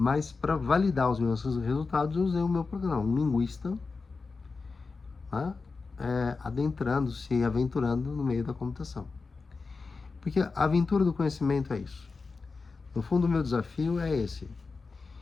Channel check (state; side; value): quieter; right; 4.3 dB